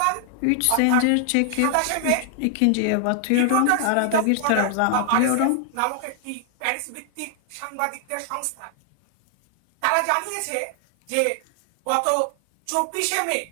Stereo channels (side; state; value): both; different; correlation 0.00